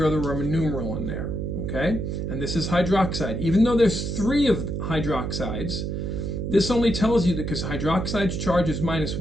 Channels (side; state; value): right; noise; hum, 3 dB below the sound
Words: the Roman numeral in there, okay? And this is hydroxide. Even though there's 3 of hydroxides, this only tells you that because hydroxide's charge is